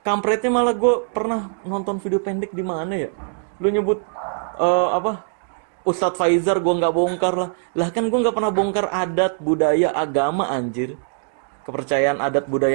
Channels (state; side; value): silent; left; digital silence